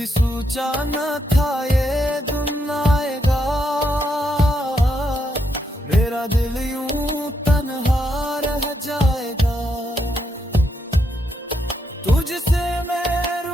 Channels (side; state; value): both; normal; correlation 0.79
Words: सोचा न था ये दिन आएगा, मेरा दिल यूं तन्हा रह जाएगा। तुझसे मैं